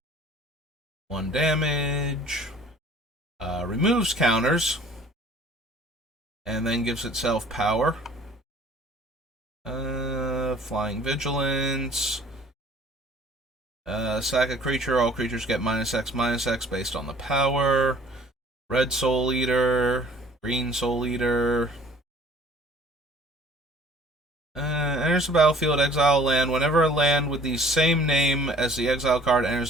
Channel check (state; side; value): normal; both; correlation 0.53